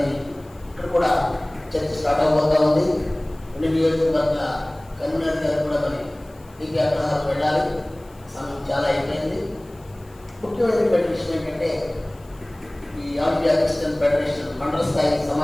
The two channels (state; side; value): noise; left; hiss, 29 dB below the sound